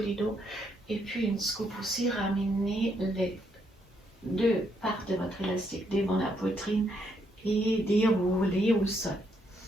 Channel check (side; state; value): both; normal; correlation 0.75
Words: du dos. Et puis une scoop aussi, ramener les deux parts de votre élastique devant la poitrine et dérouler au sol.